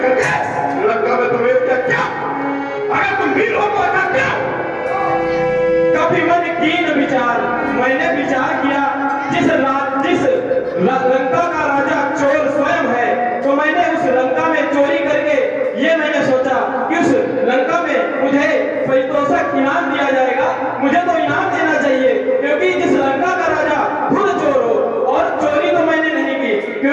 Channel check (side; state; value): both; identical; correlation 1.00